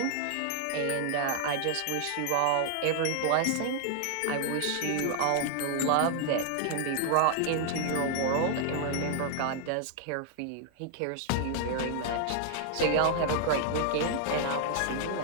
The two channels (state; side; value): different; both; correlation 0.00